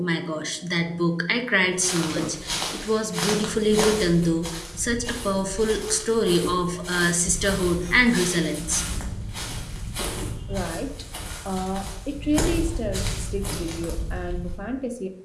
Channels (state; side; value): identical; both; correlation 1.00